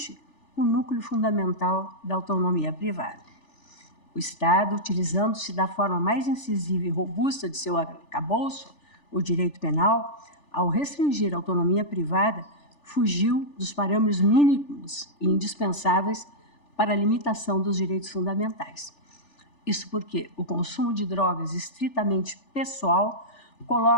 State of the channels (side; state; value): right; late; 3.4 ms